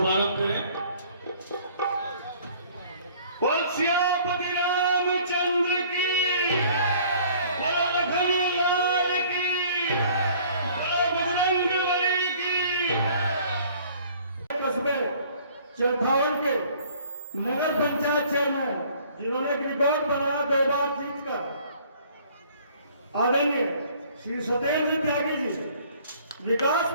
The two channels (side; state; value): both; inverted; correlation -0.55